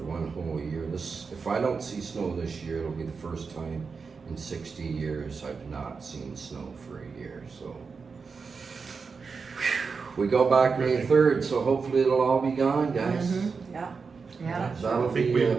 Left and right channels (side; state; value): left; quieter; 5.1 dB